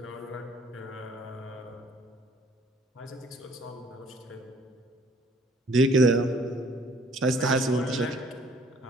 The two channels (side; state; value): both; normal; correlation 0.59